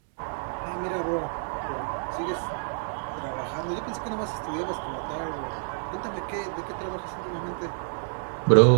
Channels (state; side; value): silent; left; digital silence